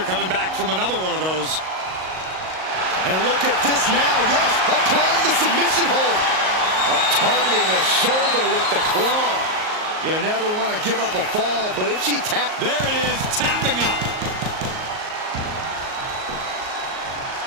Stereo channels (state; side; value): late; left; 38 ms